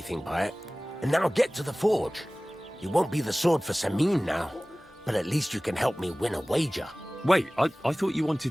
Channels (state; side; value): normal; both; correlation 0.98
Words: by it. And now get to the forge. You won't be the sword for Samin now, but at least you can help me win a wager. Wait, I thought you